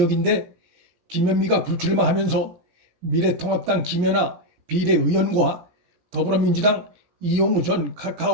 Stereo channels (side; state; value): left; late; 17 ms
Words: 김현미가 불출마하면서 미래통합당 김연아 비례의원과 더불어민주당 이용우 전